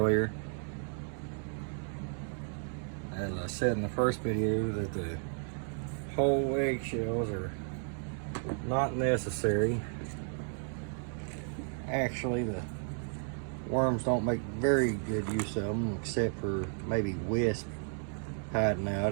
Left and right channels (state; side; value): silent; left; 55 dB below the other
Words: As I said in the first video, that the whole eggshells are not necessary. Actually, the worms don't make very good use of them, except for maybe wisp hiding